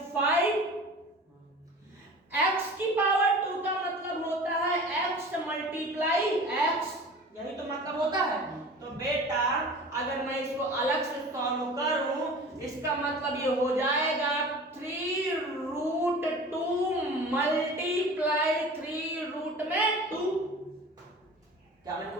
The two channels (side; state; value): both; normal; correlation 0.39